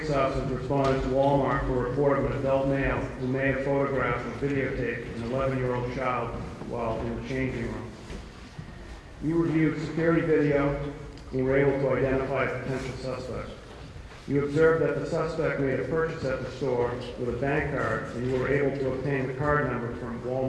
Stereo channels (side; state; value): both; identical; correlation 1.00